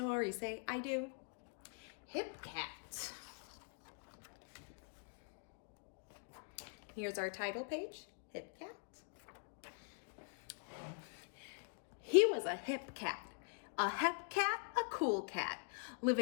say I do. Hip Cat. Here's our title page, Hip Cat. He was a hip cat. A hip cat, a cool cat,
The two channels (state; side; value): quieter; right; 35.7 dB